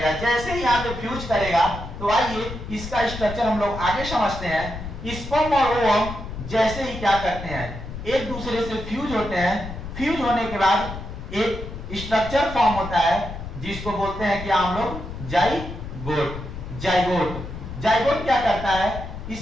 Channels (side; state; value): left; noise; rumble, 9 dB below the sound